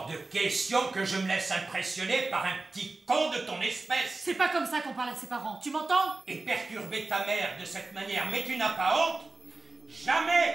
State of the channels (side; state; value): left; quieter; 3.4 dB